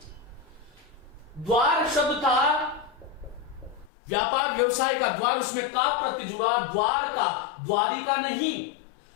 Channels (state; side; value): drops out; right; at 3.9 s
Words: द्वार शब्द था, व्यापार व्यवसाय का द्वार, उसमें का प्रत्यय जुड़ा, द्वार का, द्वारिका नहीं।